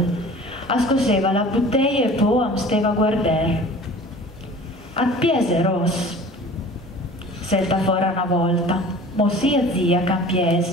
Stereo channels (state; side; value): normal; both; correlation 0.44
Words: Ascoseva la bottiglia e poi am steva a guardare. A piese, Ross, selta fuori una volta. Mo sia zia